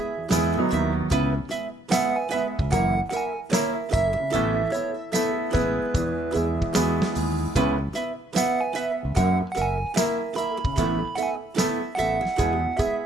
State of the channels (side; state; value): both; normal; correlation 0.72